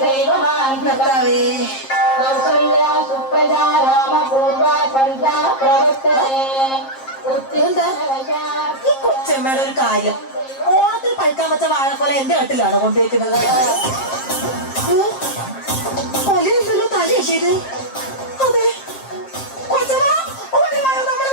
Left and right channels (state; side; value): late; right; 7.5 ms